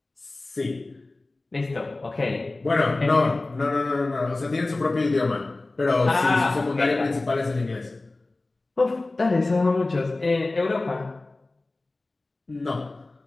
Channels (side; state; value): right; quieter; 3.1 dB